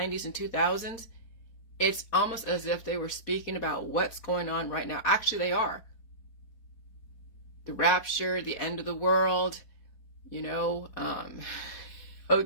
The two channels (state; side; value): late; right; 4.2 ms